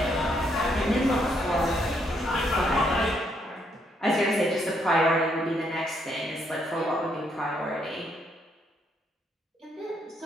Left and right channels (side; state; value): both; normal; correlation 0.73